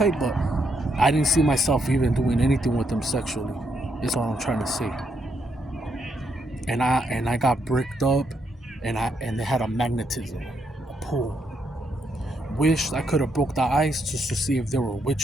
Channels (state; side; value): normal; both; correlation 0.77